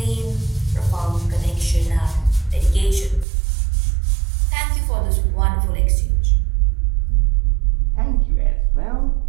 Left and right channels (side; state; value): left; drops out; at 3.2 s